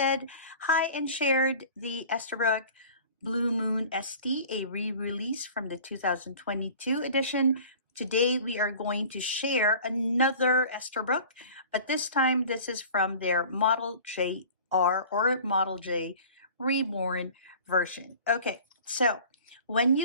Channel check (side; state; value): both; inverted; correlation -0.43